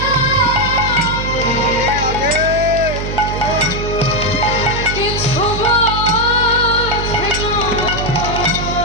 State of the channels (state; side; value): noise; right; hum, 5 dB below the sound